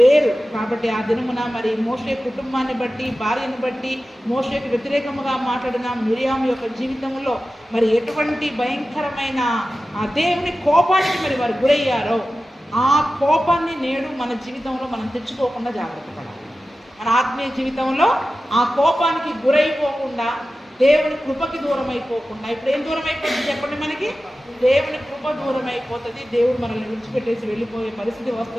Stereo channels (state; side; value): normal; both; correlation 0.94